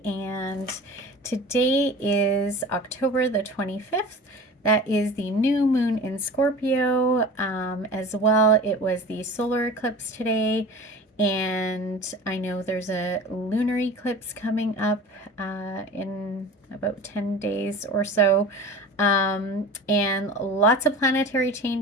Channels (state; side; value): normal; both; correlation 0.37